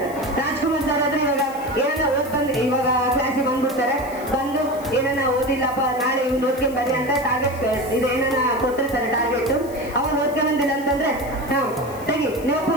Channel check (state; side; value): noise; left; hiss, 20 dB below the sound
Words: ಇವಾಗ ಕ್ಲಾಸಿಗೆ ಬಂದ್ಬಿಡ್ತಾರೆ, ಬಂದು ಏನನ್ನ ಓದಿಲ್ಲಪ್ಪ ನಾಳೆ ಇವ್ನು ಓದ್ಕೊಂಡ್ ಬರ್ರಿ ಅಂತ ಟಾರ್ಗೆಟ್ ಇದು ಏನನ್ನ ಕೊಟ್ಟಿರ್ತಾರೆ ಟಾರ್ಗೆಟ್. ಅವ್ನು ಓದ್ಕೊಂಡ್ ಬಂದಿಲ್ಲ ಅಂತಂದ್ರೆ ತೆಗಿ ನೀವು